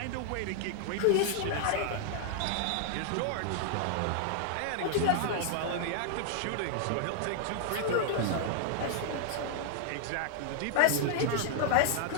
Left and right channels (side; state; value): both; different; correlation 0.00